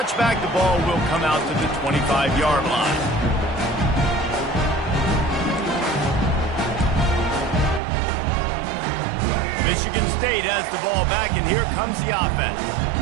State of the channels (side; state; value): left; drops out; at 7.8 s